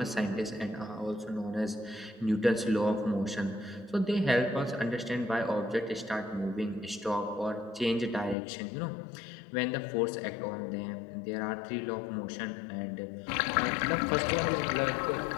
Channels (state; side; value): drops out; right; at 8.3 s